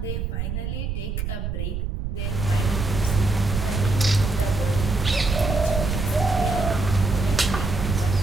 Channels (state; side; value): noise; right; rumble, 3 dB below the sound